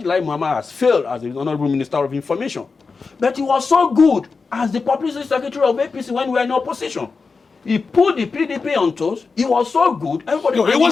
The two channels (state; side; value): quieter; right; 4.6 dB